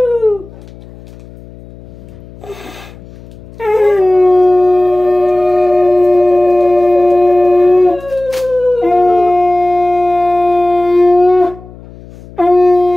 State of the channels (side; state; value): left; noise; hum, 20 dB below the sound